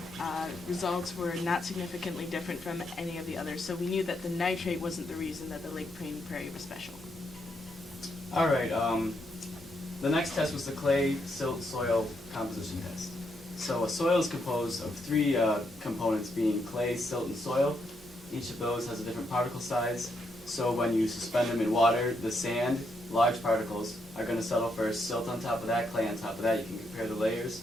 results were not significantly different from any of the others, so we knew that the nitrate wasn't the reason that the Lake Prairie was special. All right. The next test was the clay silt soil composition test. So a soil is composed of 3 components, being clay, silt, and soil. Each of those has a different particle size. So when you suspend them in water, the sand, large particles, are going to settle first. Silt on top of that, clay on top of that. You can compare the layers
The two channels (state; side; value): normal; both; correlation 0.78